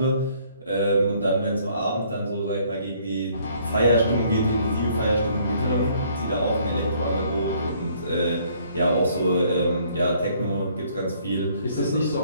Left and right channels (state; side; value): inverted; both; correlation -0.63